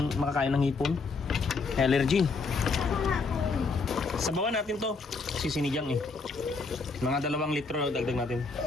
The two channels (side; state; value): right; quieter; 4.2 dB